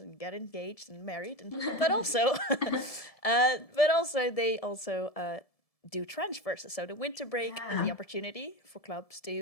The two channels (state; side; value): late; right; 1.7 ms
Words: get engaged and married, but also, they also do transfers. So the winter break is the opportunity for clubs